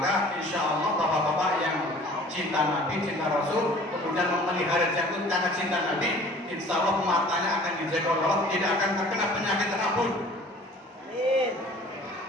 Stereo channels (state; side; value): normal; both; correlation 0.49